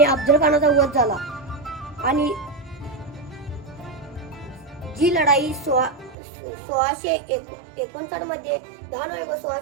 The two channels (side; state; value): left; drops out; at 6.2 s